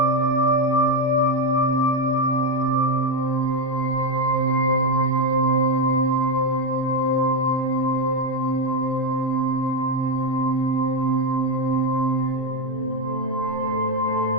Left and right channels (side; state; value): left; late; 2.7 ms